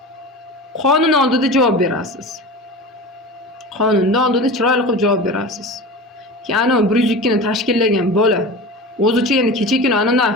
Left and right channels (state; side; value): normal; both; correlation 0.31